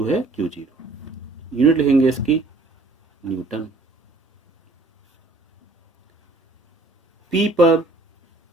है Q0। यूनिट लिखेंगे इसकी न्यूटन। P पर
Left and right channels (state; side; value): quieter; left; 3.2 dB